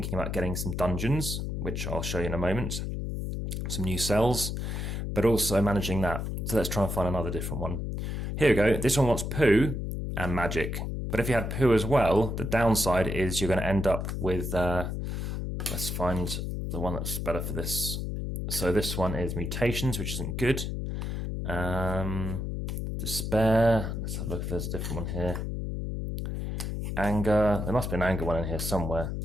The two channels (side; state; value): left; noise; hum, 3 dB below the sound